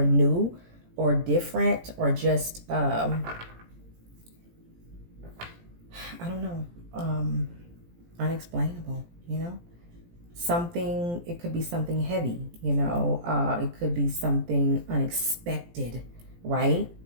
new or different or just, I don't know, unexplainable, you know, something, it could be something heavy, you know, it could be something unexpected, right?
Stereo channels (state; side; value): late; left; 17 ms